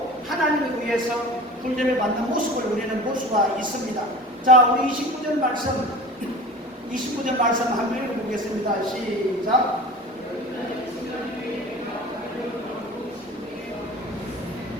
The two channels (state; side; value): normal; both; correlation 0.37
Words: 하나님을 위해서 훈련을 받는 모습을 우리는 볼 수가 있습니다. 자, 우리 29절 말씀 한번 읽어보겠습니다. 시작.